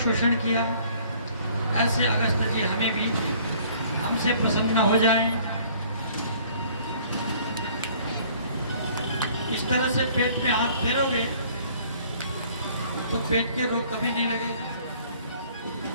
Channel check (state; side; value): inverted; both; correlation -0.56